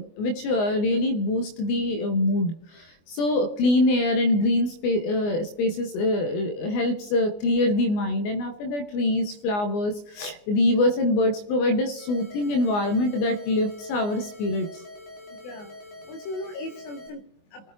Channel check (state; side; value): late; right; 24 ms